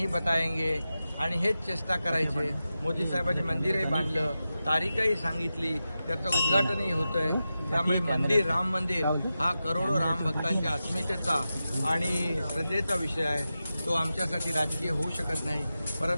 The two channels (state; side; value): inverted; both; correlation -0.92